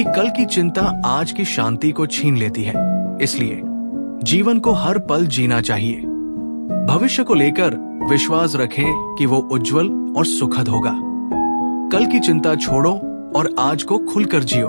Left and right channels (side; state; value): both; inverted; correlation -1.00